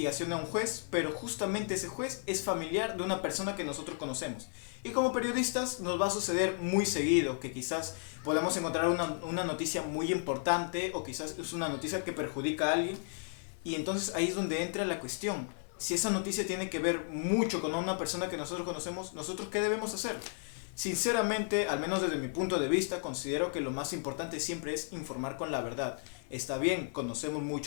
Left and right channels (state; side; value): silent; right; 55 dB below the other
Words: a un juez, pero justamente ese juez es familiar de una persona que nosotros conocemos. Y como periodistas nos va a suceder muy seguido que quizás podamos encontrar una noticia muy importante o quizás es una noticia que perjudica a alguien. Y entonces ahí es donde entra la cuestión. Si esa noticia tiene que ver mucho con una persona que nosotros conocemos, ¿nosotros qué debemos hacer? Sinceramente, al menos desde mi punto de vista, considero que lo más importante siempre es informar con la verdad. Está bien, conocemos